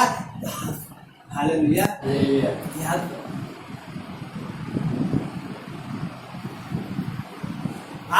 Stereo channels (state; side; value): identical; both; correlation 1.00